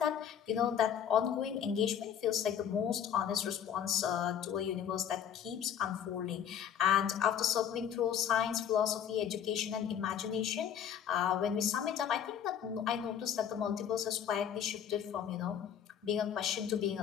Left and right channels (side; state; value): right; quieter; 8.9 dB